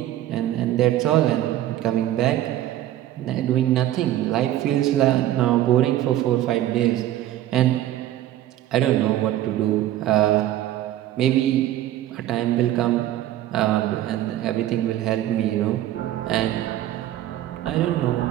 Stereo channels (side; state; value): left; quieter; 13.3 dB